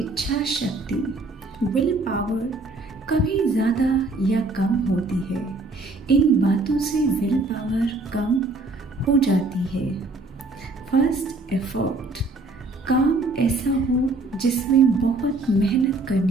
इच्छा शक्ति विल पावर कभी ज़्यादा या कम होती है। इन बातों से विल पावर कम हो जाती है। First, effort. काम ऐसा हो जिसमें बहुत मेहनत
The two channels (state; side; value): quieter; left; 3.1 dB